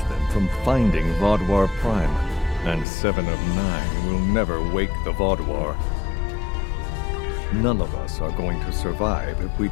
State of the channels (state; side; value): drops out; right; at 2.9 s